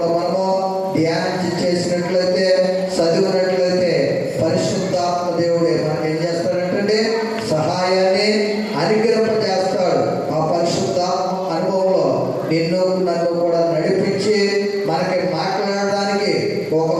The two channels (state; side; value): identical; both; correlation 1.00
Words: మనము ధ్యానం చేసినట్లయితే, చదివినట్లయితే పరిశుద్ధాత్మ దేవుడే మనకి ఏం చేస్తాడంటే సహాయాన్ని అనుగ్రహింపజేస్తాడు. ఆ పరిశుద్ధాత్మ అనుభవంలో నిన్ను నన్ను కూడా నడిపించి మనకి మాట్లాడడానికి